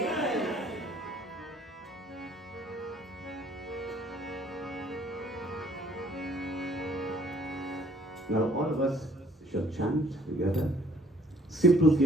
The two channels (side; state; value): both; normal; correlation 0.59